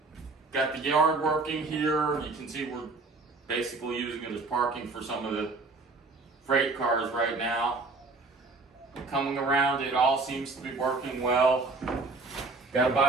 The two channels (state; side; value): quieter; left; 3.7 dB